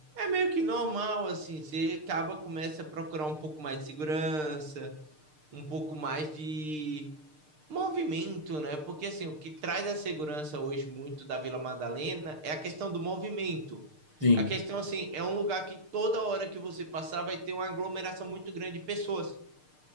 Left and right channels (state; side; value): late; left; 6.6 ms